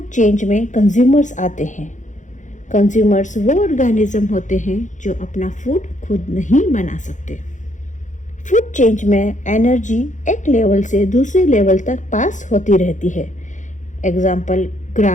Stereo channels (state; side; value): late; right; 0.36 ms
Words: चेंज में कंज्यूमर्स आते हैं। कंज्यूमर्स वो ऑर्गेनिज्म होते हैं जो अपना फूड खुद नहीं बना सकते। फूड चेंज में एनर्जी एक लेवल से दूसरे लेवल तक पास होती रहती है। एग्जाम्पल: